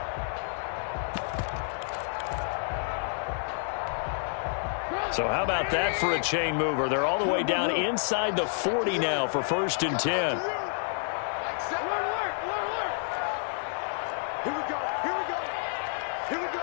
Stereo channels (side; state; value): right; silent; digital silence